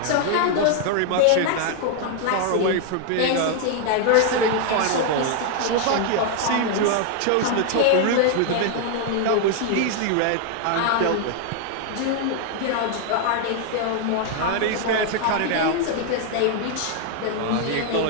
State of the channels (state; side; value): different; both; correlation 0.00